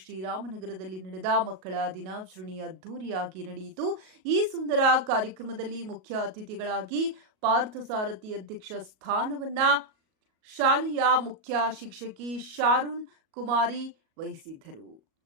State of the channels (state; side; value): late; left; 38 ms